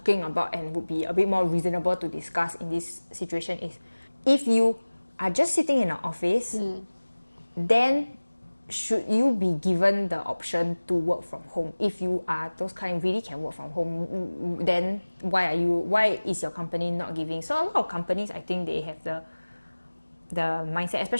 about and would be a bit more reasonable to discuss in this situation is if you are just sitting in an office, then should you be given the option to work from home? If you are those kind really can work from home, then why is your company not giving? So a lot of companies, I think they have the mindset,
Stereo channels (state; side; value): inverted; both; correlation -1.00